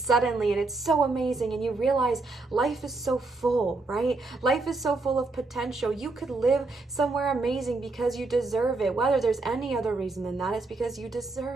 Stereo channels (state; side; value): quieter; left; 3.5 dB